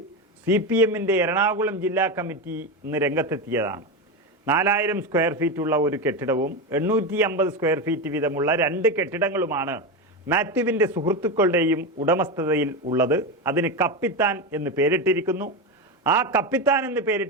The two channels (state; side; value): normal; both; correlation 0.16